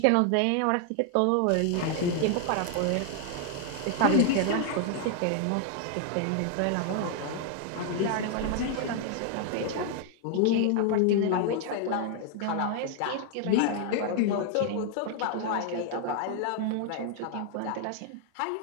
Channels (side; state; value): both; different; correlation 0.00